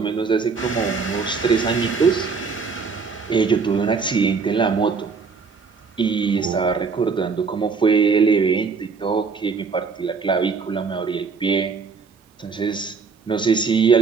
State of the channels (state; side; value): quieter; left; 5.1 dB